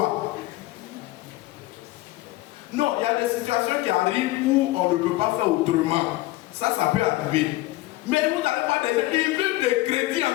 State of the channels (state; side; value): quieter; right; 18.4 dB